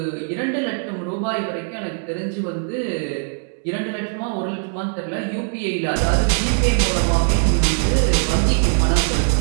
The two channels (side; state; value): left; silent; digital silence